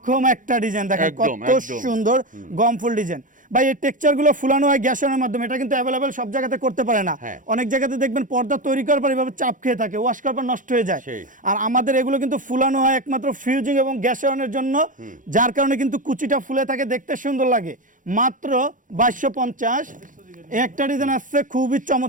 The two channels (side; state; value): left; late; 0.38 ms